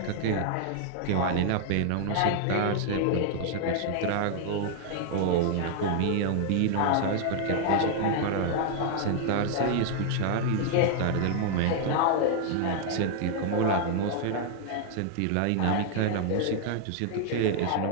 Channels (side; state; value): both; different; correlation 0.00